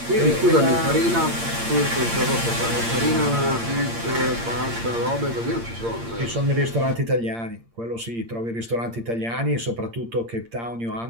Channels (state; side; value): late; left; 8.7 ms